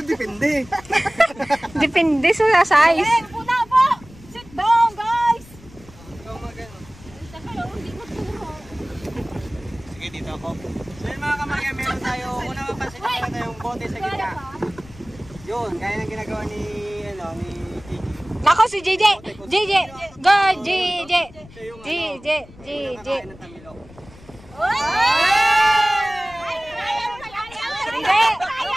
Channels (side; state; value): left; noise; rumble, 21 dB below the sound